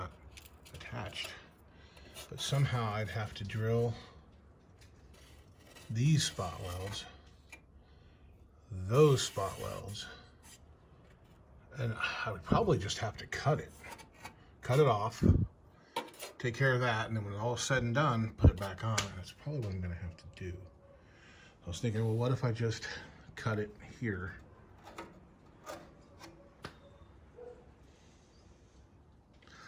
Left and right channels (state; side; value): identical; both; correlation 1.00